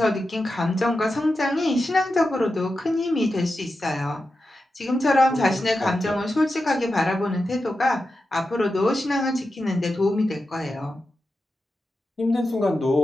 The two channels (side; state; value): both; normal; correlation 0.90